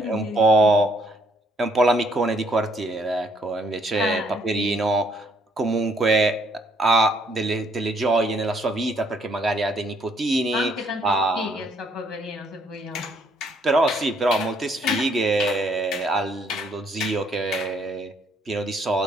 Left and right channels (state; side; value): normal; both; correlation 0.68